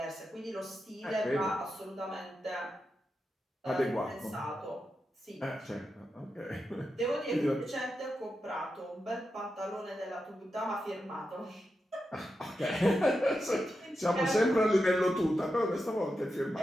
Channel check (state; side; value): normal; both; correlation 0.88